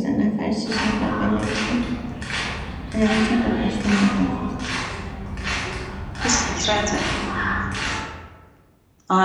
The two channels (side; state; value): both; identical; correlation 1.00